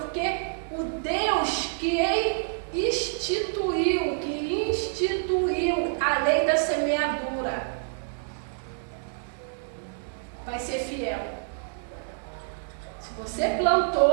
o Deus que instituiu a lei da semeadura vai ser fiel. Se você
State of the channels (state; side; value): silent; left; digital silence